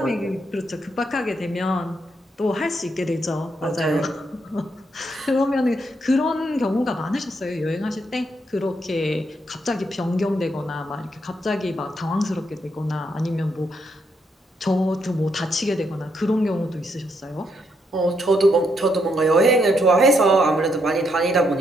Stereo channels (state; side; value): normal; both; correlation 0.77